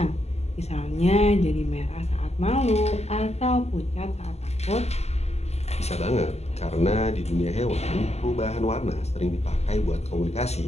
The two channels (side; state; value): right; late; 0.31 ms